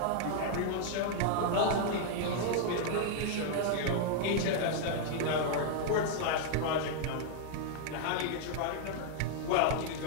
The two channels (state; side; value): different; both; correlation 0.00